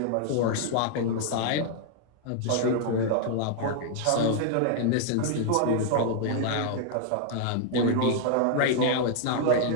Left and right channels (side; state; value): both; different; correlation 0.00